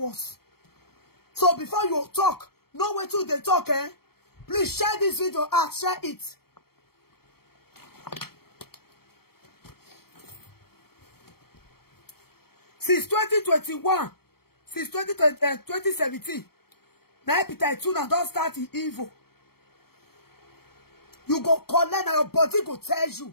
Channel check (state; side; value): late; right; 0.95 ms